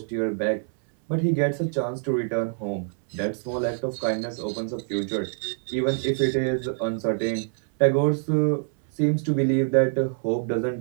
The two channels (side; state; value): left; silent; 62 dB below the other